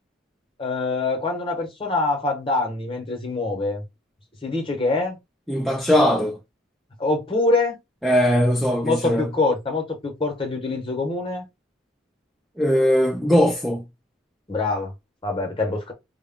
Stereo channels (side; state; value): both; normal; correlation 0.63